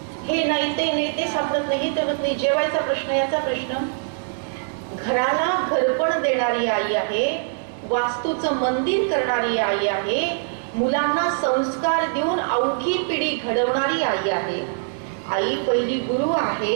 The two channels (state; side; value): silent; left; digital silence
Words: हे नाही ते सापडत नाही, तर नाही. जेवायचा प्रश्न, याचा प्रश्न. घराला घरपण देणारी आई आहे, वास्तूचं मंदिर करणारी आई आहे, मुलांना संस्कार देऊन अवघी पिढी घडवणारी आई आहे. आई पहिली गुरु आहे